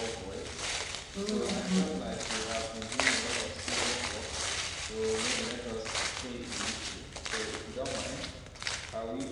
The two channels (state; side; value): identical; both; correlation 1.00